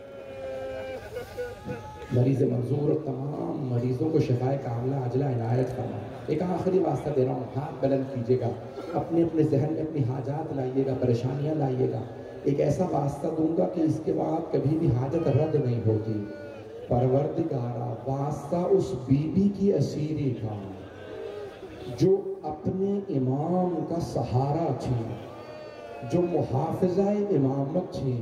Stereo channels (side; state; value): both; identical; correlation 1.00